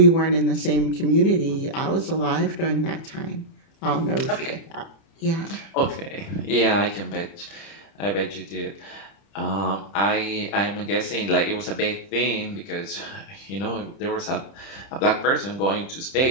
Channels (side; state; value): right; late; 30 ms